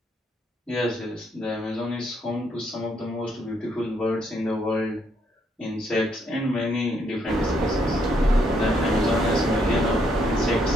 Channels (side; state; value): both; normal; correlation 0.73